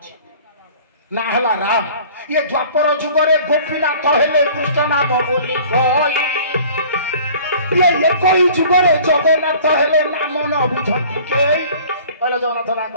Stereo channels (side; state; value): both; inverted; correlation -0.48